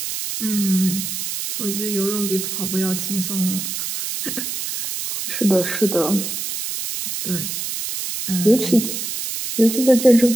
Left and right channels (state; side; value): noise; right; hiss, 4 dB below the sound